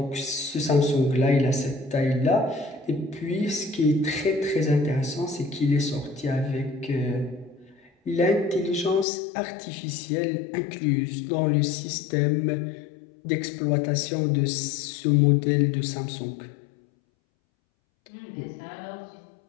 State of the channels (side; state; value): right; drops out; at 9.1 s